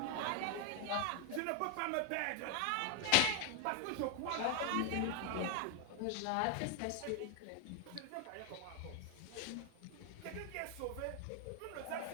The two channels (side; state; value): both; different; correlation 0.01